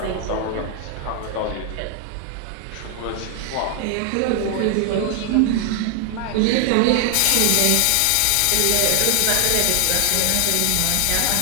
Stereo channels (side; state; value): both; different; correlation 0.00